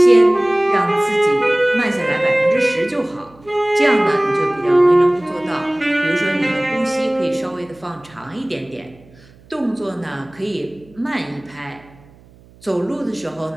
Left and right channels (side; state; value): right; noise; hum, 26 dB below the sound